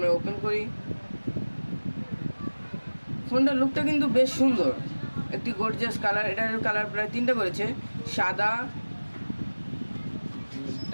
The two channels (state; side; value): inverted; both; correlation -1.00